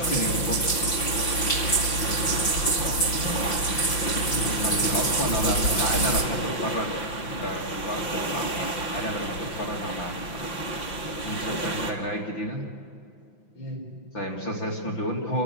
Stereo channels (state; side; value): late; right; 5.9 ms